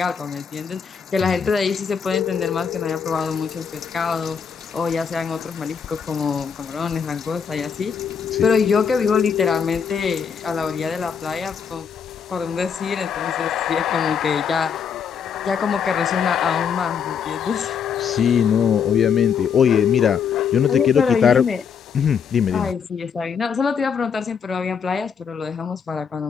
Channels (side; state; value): right; quieter; 6.8 dB